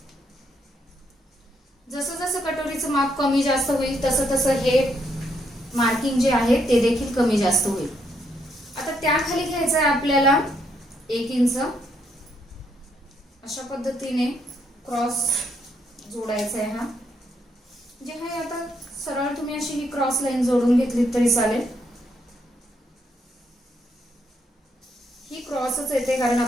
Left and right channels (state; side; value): normal; both; correlation 0.75